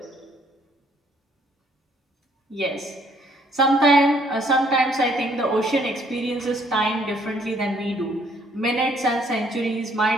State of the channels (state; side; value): normal; both; correlation 0.65